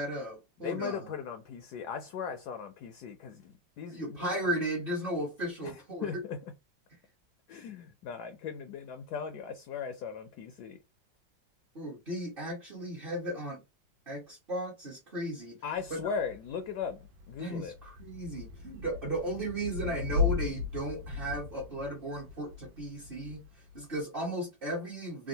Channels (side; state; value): both; normal; correlation -0.04